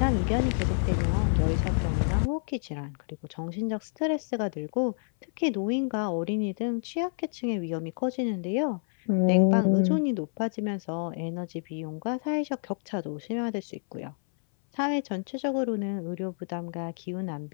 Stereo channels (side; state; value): right; silent; 59 dB below the other